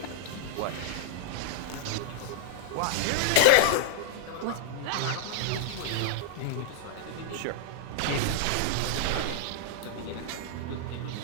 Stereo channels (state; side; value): different; both; correlation -0.02